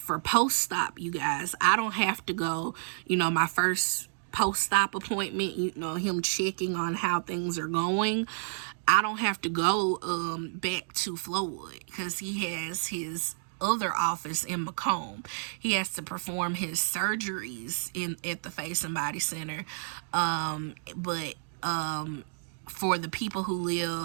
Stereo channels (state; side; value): silent; left; digital silence